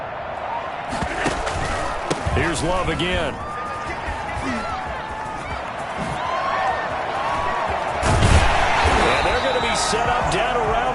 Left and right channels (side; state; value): both; identical; correlation 1.00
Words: Here's Love again. And they're going to be set up down